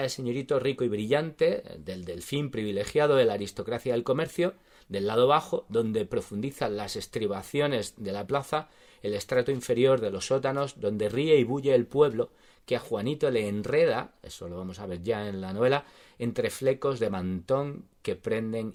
del señorito rico y brillante, del delfín privilegiado de la aristocracia del comercio. Del lado bajo, donde profundizan las estribaciones de la plaza, el estrato inferior de los sótanos, donde ríe y bulle el pueblo, que a Juanito le enreda, eso lo vamos a ver ya en la novela, entre flecos de mantón que prenden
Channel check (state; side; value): identical; both; correlation 1.00